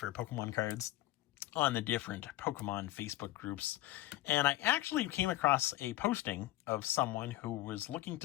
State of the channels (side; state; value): right; quieter; 16.3 dB